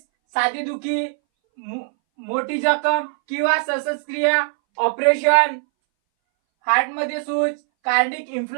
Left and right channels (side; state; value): left; silent; 62 dB below the other